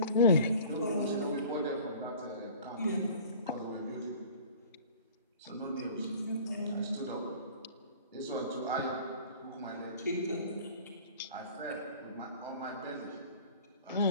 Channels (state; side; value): inverted; both; correlation -0.45